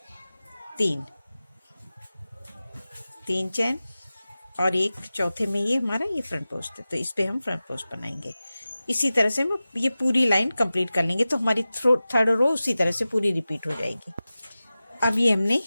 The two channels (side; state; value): both; inverted; correlation -0.96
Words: 3, 3 चैन और एक चौथे में ये हमारा ये फ्रंट पोस्ट है, तो इस पे हम फ्रंट पोस्ट बनाएंगे। इसी तरह से हम ये पूरी लाइन कंप्लीट कर लेंगे, तो हमारी थर्ड रो उसी तरह से पूरी रिपीट हो जाएगी। अब ये हमने